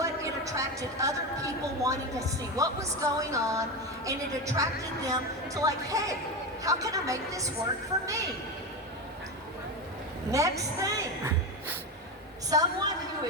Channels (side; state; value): both; normal; correlation 0.18